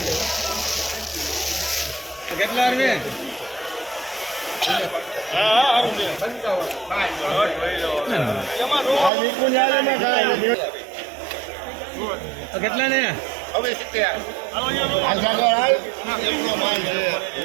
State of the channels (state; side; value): drops out; left; at 9.1 s